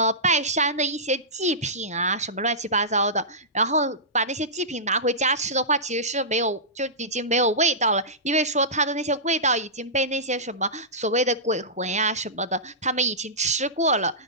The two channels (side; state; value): both; normal; correlation -0.18